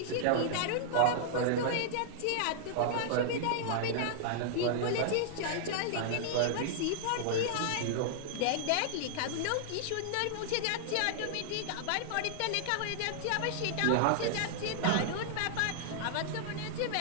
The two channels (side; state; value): both; different; correlation -0.01